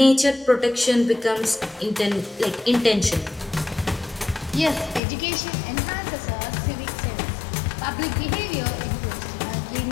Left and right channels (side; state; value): right; drops out; at 5.0 s